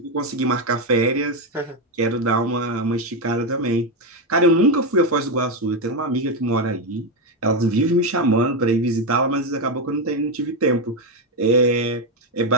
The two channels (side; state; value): both; normal; correlation 0.08